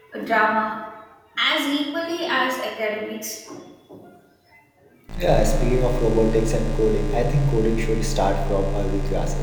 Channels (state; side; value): identical; both; correlation 1.00